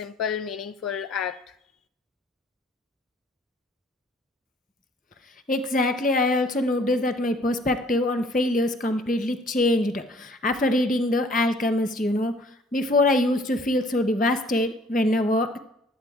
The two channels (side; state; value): both; normal; correlation 0.57